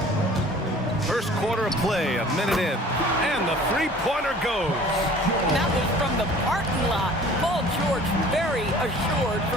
First quarter of play, a minute in. And the three-pointer goes. That was from the parking lot. Paul George very assured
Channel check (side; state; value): both; normal; correlation 0.48